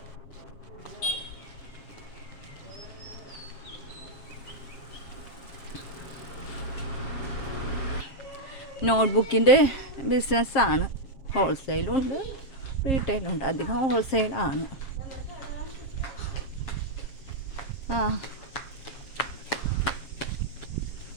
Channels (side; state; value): right; late; 7.4 ms